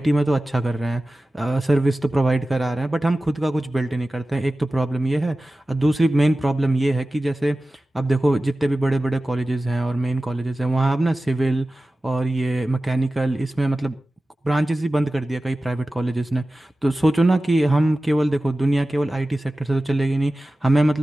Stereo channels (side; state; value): both; normal; correlation 0.96